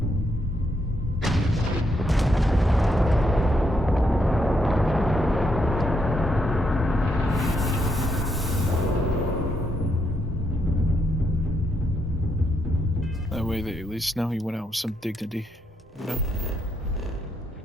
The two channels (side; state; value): both; normal; correlation 0.77